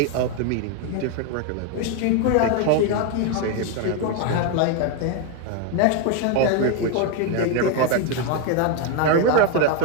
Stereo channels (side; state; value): both; different; correlation 0.02